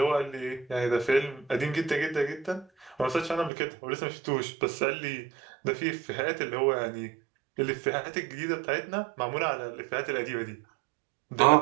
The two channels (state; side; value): drops out; left; at 3.5 s